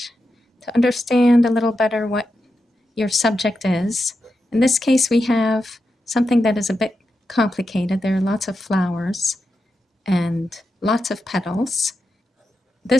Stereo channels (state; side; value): normal; both; correlation 0.88